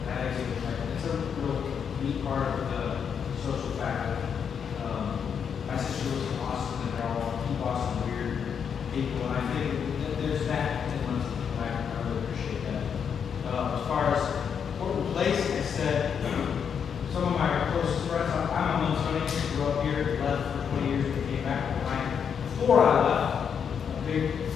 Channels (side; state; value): right; quieter; 7.3 dB